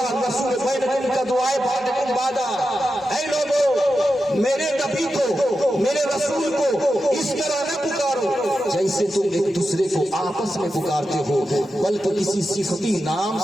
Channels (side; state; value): both; normal; correlation 0.90